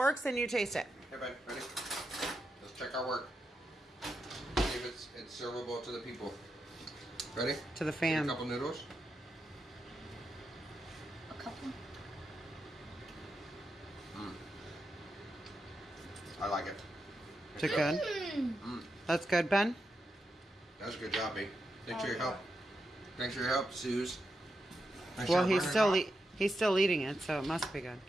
and you taste it. Hey, Ben, ready? Let's check our work. See if it's servable to the people. Ready? To the Get a fam. couple noodles. A couple. I like it. Is it good? Mm. That's good, Ben? That's a good job, B. Thanks for your help. Thanks for your help, Suze. Nice Well, job he's running still off. he's still eating it, so it must be good.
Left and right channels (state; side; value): normal; both; correlation 0.86